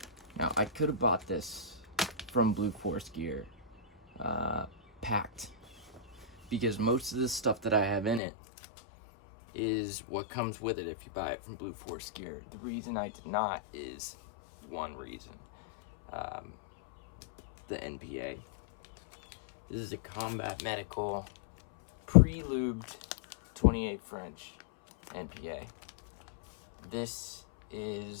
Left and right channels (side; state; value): right; drops out; at 8.2 s